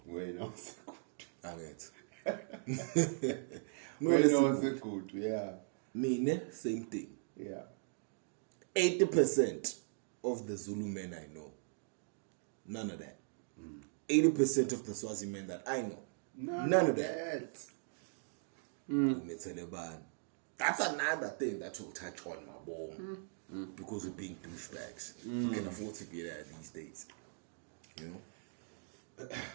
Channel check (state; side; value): silent; left; digital silence